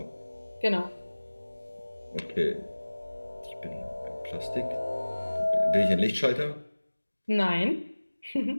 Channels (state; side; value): inverted; both; correlation -1.00